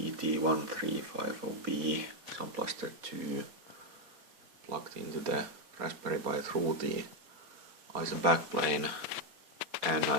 Sound Blaster 2, plugged into the Raspberry Pi through the ISA backplane, and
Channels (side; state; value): left; late; 4.2 ms